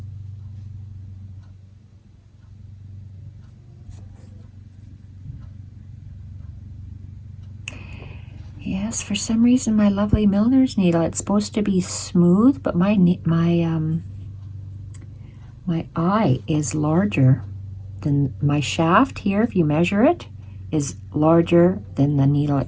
Yes, for some reason my lovely milliner's needle, it's supposed to be smooth, but my eye is larger than my shaft here. If you measure it, is larger than the needle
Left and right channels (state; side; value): identical; both; correlation 1.00